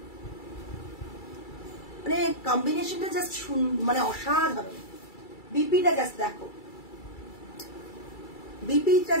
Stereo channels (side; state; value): right; late; 2.3 ms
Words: মানে কম্বিনেশনটা জাস্ট মানে অসাধারণ। বিপিটা জাস্ট দেখো, বিপিটা